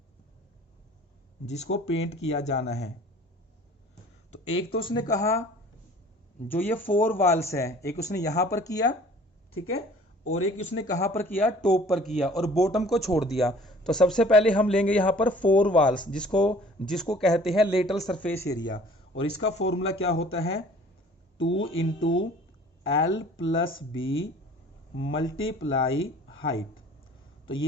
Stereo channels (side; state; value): both; normal; correlation 0.50